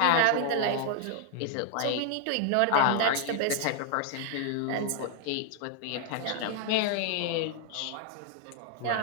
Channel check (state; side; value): different; both; correlation 0.00